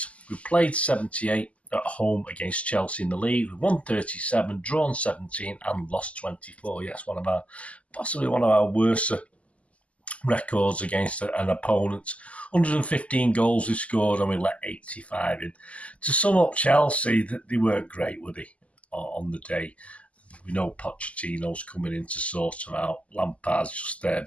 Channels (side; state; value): right; late; 0.066 ms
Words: we played 78 at home against Chelsea in the league, we won 37, drawn 17 and lost 24. Yes, possibly one of our worst records against an opponent. 115 goals we scored and we let 85 in. To sum up Chelsea, they weren't great, were they, on the day? We know Pochettino's coming in to sort them out. Lampard's just